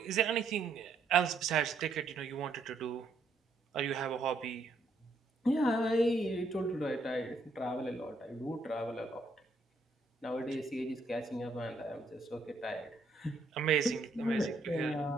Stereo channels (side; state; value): left; quieter; 3.2 dB